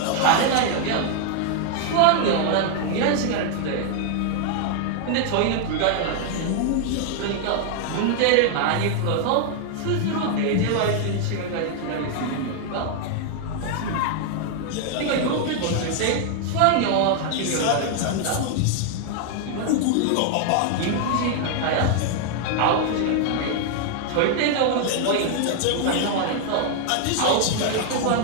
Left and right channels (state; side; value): different; both; correlation 0.00